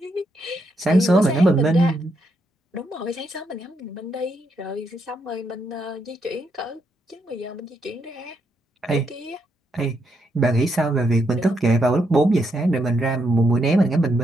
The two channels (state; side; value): normal; both; correlation 0.78